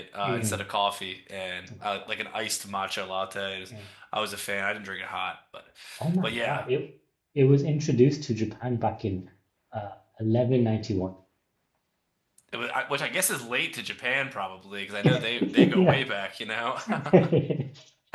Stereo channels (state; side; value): identical; both; correlation 1.00